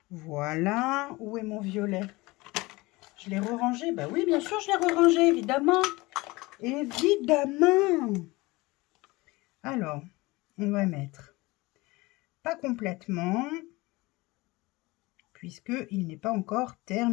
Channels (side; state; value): right; quieter; 22.1 dB